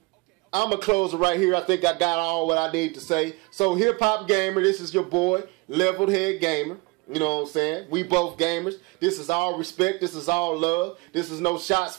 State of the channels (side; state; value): left; quieter; 25.8 dB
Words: I'm going to close it right here. I think I got all what I need to say. So HipHopGamer, this is your boy, Leveled Head Gamer. You know what I'm saying? We both gamers. This is all respect. This is all love. This is no shots